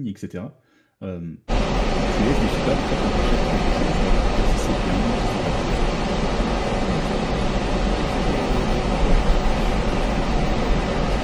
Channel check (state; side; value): identical; both; correlation 1.00